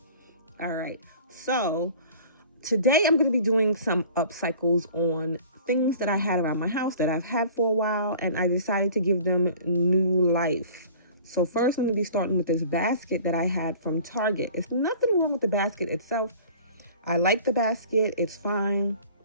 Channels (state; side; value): inverted; both; correlation -0.46